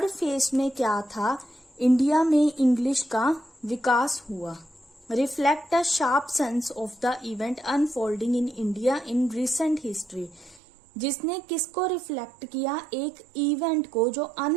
phase में क्या था, इंडिया में इंग्लिश का विकास हुआ. Reflect a sharp sense of the event unfolding in India in recent history. जिसने किसको रिफ्लेक्ट किया, एक इवेंट को जो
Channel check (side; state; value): left; drops out; at 10.6 s